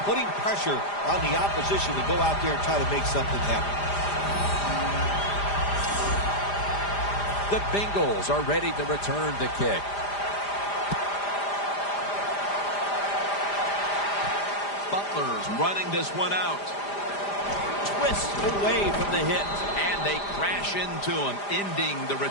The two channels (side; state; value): right; late; 5.0 ms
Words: putting pressure on the opposition to go out there and try to make something happen. The Bengals are ready to return the kick. Butler's running this one out. Twists away from the hit, and they crash into him, ending the